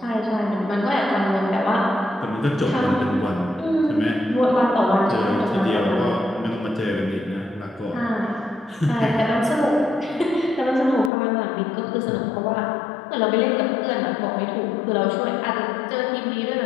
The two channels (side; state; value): right; drops out; at 11.1 s